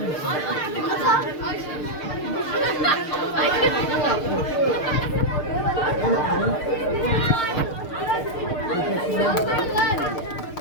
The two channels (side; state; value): right; late; 6.6 ms